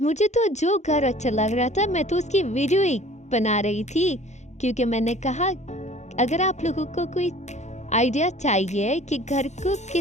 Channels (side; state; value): right; late; 0.33 ms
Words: मुझे तो जो घर अच्छा लग रहा था मैं तो उसकी वीडियो ही बना रही थी, क्योंकि मैंने कहा अगर आप लोगों को कोई आइडिया चाहिए कि घर को